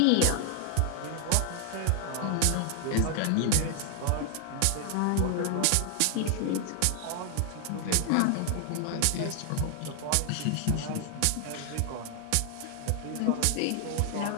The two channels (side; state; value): both; different; correlation 0.00